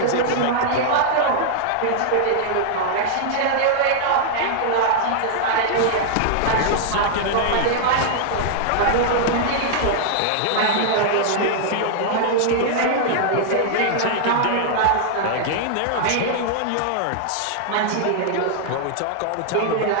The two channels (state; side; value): different; both; correlation -0.01